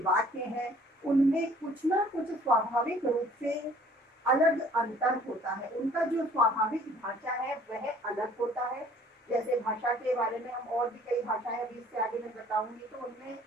वाक्य हैं, उनमें कुछ ना कुछ स्वाभाविक रूप से अलग अंतर होता है। उनका जो स्वाभाविक भाषा है वह अलग होता है। जैसे भाषा के बारे में हम और भी कई भाषाएं अभी इससे आगे मैं बताऊंगी, तो उनमें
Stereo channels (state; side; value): normal; both; correlation 0.54